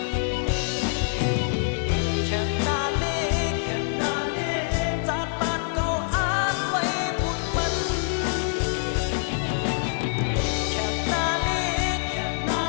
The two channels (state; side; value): silent; right; digital silence